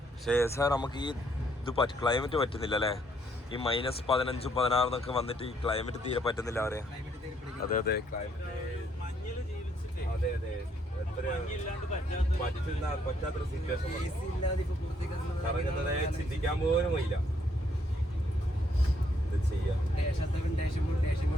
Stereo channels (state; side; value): normal; both; correlation 0.70